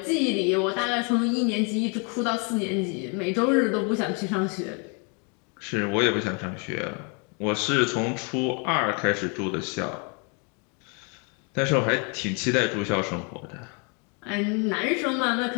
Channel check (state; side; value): quieter; right; 35.8 dB